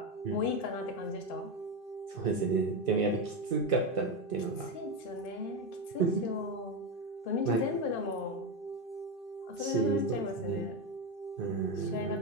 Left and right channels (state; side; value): late; right; 2.5 ms